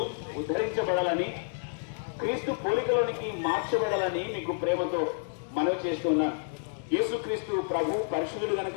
ఉద్ధరించబడాలని, క్రీస్తు పోలికలోనికి మార్చబడాలని మీకు ప్రేమతో మనవి చేస్తున్నాను. యేసుక్రీస్తు ప్రభు పరిశుద్ధుడు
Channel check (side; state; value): right; silent; digital silence